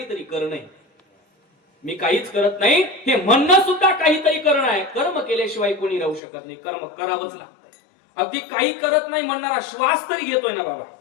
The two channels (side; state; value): right; drops out; at 6.2 s